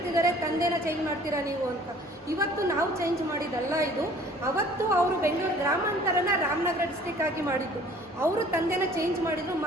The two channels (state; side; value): normal; both; correlation 0.52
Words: ತಂದೆನ ಚೇಂಜ್ ಮಾಡ್ತೀರಾ ನೀವು ಅಂತ. ಇವತ್ತು ನಾವು ಚೇಂಜ್ ಮಾಡಿದ್ದಲ್ಲ ಇದು. ಅವತ್ತು ಅವರು ಬೆಂಗಳೂರು ಗ್ರಾಮಾಂತರನ ರಾಮನಗರ ಡಿಸ್ಟಿಕ್ ಆಗಿ ಮಾಡಿದ್ದು. ಅವರು ತಂದೆನ ಚೇಂಜ್ ಮಾಡಿದ್ರು.